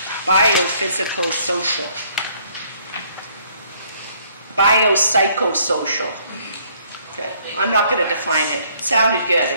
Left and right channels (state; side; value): inverted; both; correlation -0.64